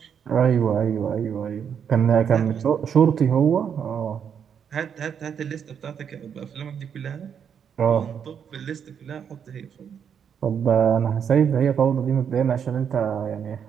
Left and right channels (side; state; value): left; quieter; 7.8 dB